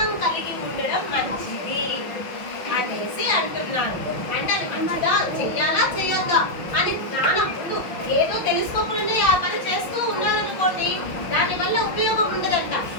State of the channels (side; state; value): right; late; 5.9 ms